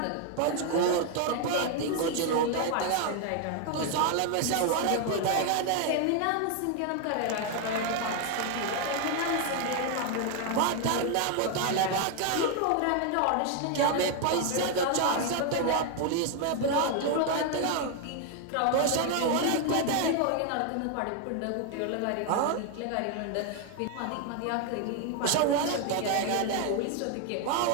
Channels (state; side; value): different; both; correlation 0.01